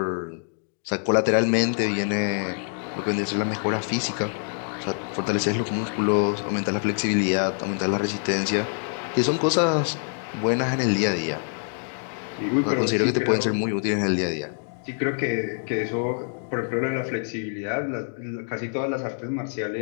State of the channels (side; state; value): right; silent; 59 dB below the other